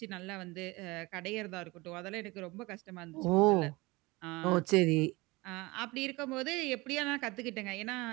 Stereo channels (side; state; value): left; quieter; 23.1 dB